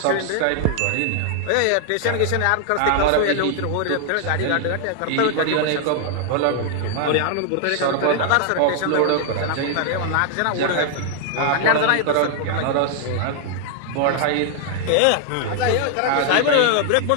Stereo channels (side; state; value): both; different; correlation 0.00